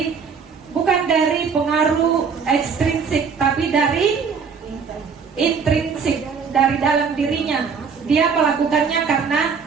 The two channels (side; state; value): left; quieter; 5.9 dB